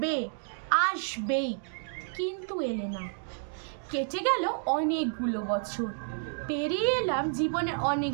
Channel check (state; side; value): silent; left; digital silence